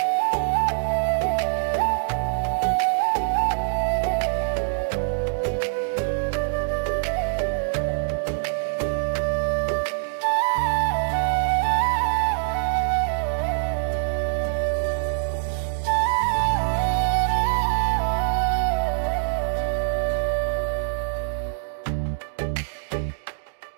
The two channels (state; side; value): silent; left; digital silence